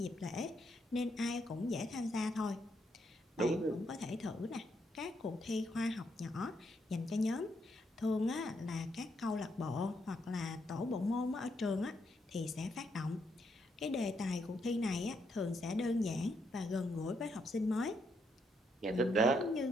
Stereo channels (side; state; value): both; normal; correlation 0.77